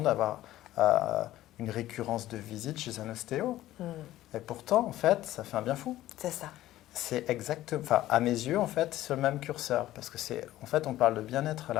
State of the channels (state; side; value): quieter; right; 14.8 dB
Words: d'avoir une récurrence de visite chez un ostéo. Et pourtant, en fait, ça fait un bien fou. C'est ça. C'est exactement, enfin, à mes yeux, en fait, c'est le même curseur. Parce que en fait, on parle de bien-être